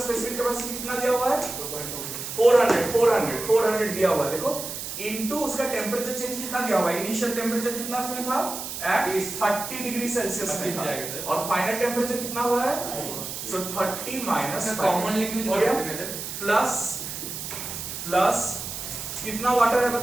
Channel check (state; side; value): noise; right; hiss, 7 dB below the sound